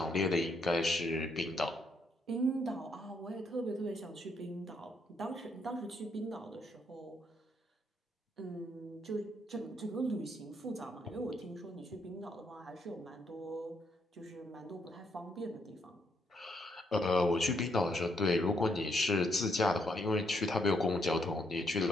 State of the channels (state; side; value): normal; both; correlation 0.74